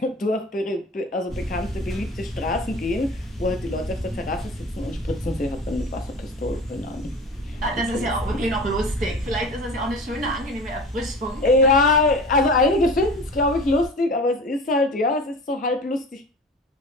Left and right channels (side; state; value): both; normal; correlation 0.37